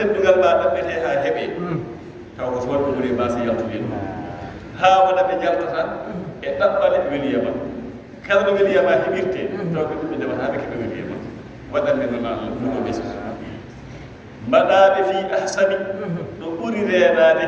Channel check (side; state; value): both; identical; correlation 1.00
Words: ma ɗaɓɓete ha heeɓe taw ko wonɓe ɓuri mbasa yaltude haa wona ɓe jaltata e ɗaɓɓale weliyama kala ɗo weliyama heɓirte taw ko ɗum ɓe ndewata ɓe keɓe weliyama waɗande noon Allah ɗuɗo ɓesgu mbaɗaɓe fi ahsani ɗo ɓuri reenade